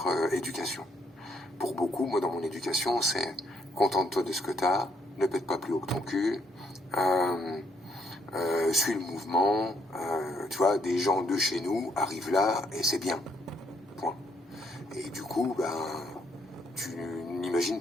éducation. Pour beaucoup, moi dans mon éducation, c'est contente-toi de ce que t'as, ne pète pas plus haut que ton cul, suis le mouvement, tu vois, des gens de chez nous arrivent là et c'est bien. Point. Et du coup, ben, tu n'imagines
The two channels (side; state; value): both; normal; correlation 0.72